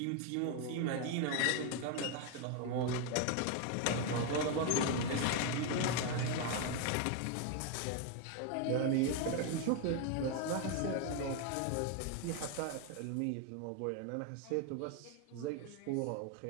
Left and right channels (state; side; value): different; both; correlation 0.01